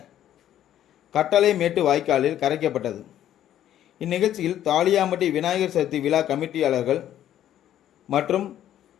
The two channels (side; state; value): right; quieter; 11.5 dB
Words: கட்டளை மேட்டு வாய்க்காலில் கரைக்கப்பட்டது. இந்நிகழ்ச்சியில் தாளியாமட்டி விநாயகர் சதுர்த்தி விழா கமிட்டியாளர்கள் மற்றும்